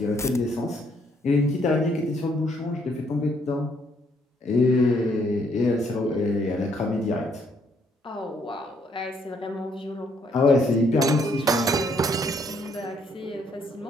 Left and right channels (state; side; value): normal; both; correlation 0.69